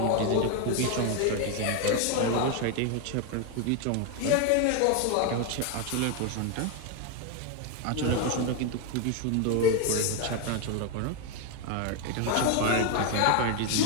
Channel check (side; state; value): both; different; correlation 0.01